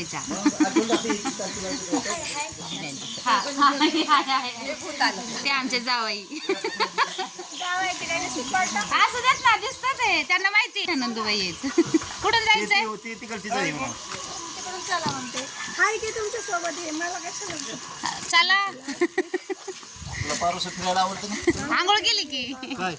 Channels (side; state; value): both; identical; correlation 1.00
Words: ते आमचे जावई. असं देत ना दिसतं ते त्यांना माहिती आहे नंदूबाई आहेत. कुठून जायचंय? चला म्हणते हाय की तुमच्या सोबत आहे मला कशाला चला. पारोस फिरायला आवडतं ना? आंघोळ केली की काय